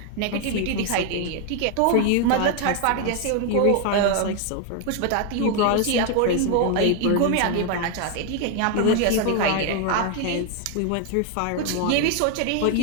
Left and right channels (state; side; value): different; both; correlation 0.00